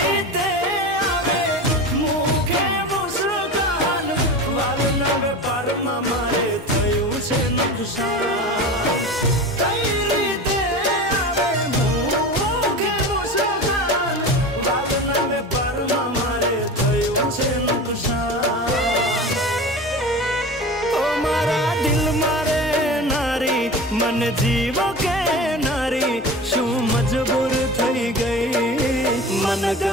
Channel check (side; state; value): both; normal; correlation 0.31